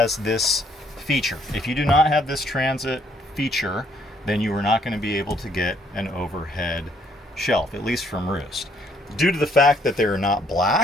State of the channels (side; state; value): both; normal; correlation 0.67